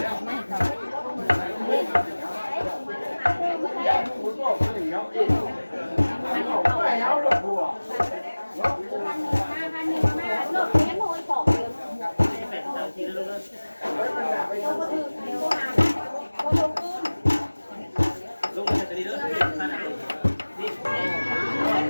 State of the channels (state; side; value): inverted; both; correlation -1.00